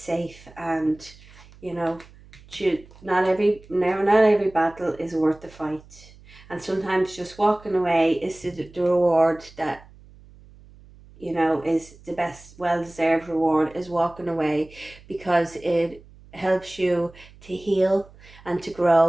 and you know, not every battle is worth the fight, and sometimes just walking away is the reward that, you know, is the best, well-deserved reward, is walking away, because it helps you to heal and to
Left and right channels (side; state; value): right; noise; hum, 23 dB below the sound